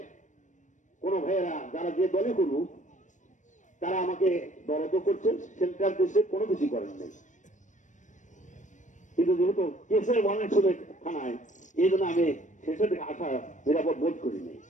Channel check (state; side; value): late; right; 0.36 ms